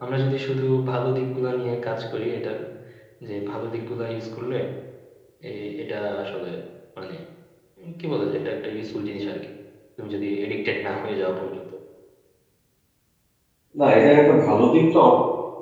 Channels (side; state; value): both; identical; correlation 1.00